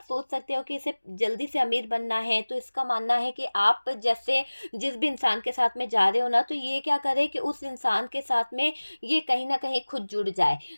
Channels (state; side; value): inverted; both; correlation -1.00